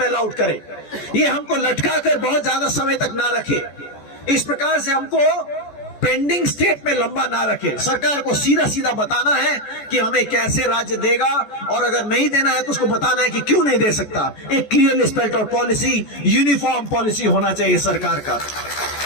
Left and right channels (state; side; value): late; right; 14 ms